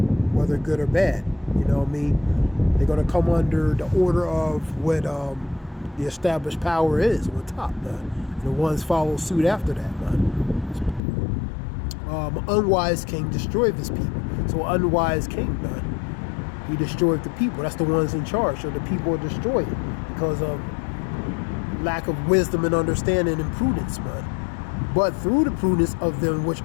whether good or bad. You know what I mean? They're going to come under the order of what the established power is on top, man. And the ones follow suit after that, man. An unwise king destroyed his people. So an unwise king, man, he destroyed the people. That's the ones in charge. So the people are destroyed because of lack of wisdom and understanding and prudence, man. But through the prudence of them which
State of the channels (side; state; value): right; drops out; at 11.0 s